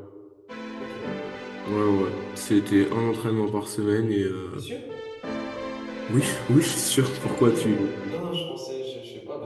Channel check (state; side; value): identical; both; correlation 1.00